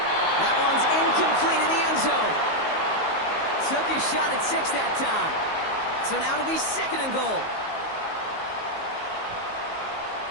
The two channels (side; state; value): right; late; 19 ms